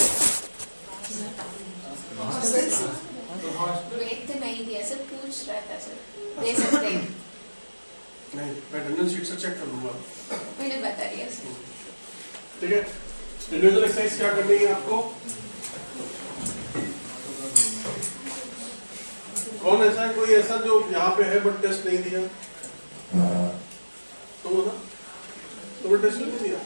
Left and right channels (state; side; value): inverted; both; correlation -1.00